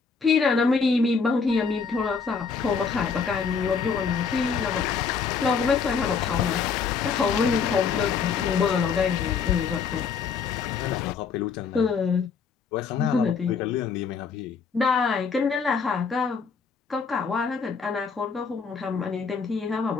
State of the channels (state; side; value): quieter; right; 5.7 dB